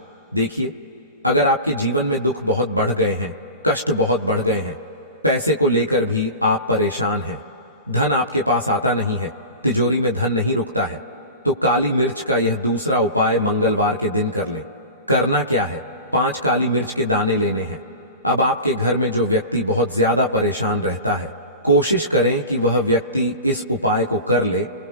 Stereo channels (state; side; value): inverted; both; correlation -0.32